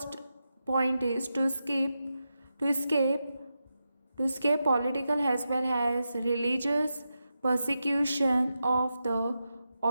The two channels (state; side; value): inverted; both; correlation -0.89